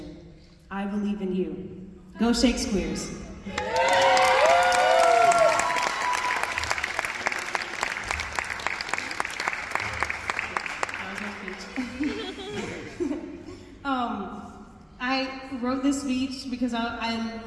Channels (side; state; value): both; identical; correlation 1.00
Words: I believe in you. Go Shakespeare's. I wrote this speech because I